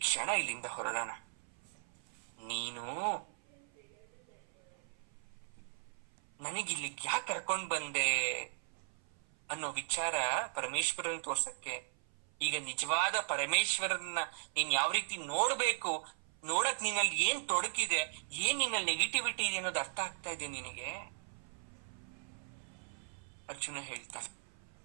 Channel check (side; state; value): left; silent; 53 dB below the other